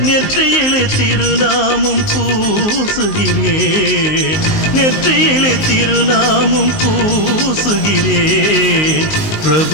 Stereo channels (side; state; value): right; late; 19 ms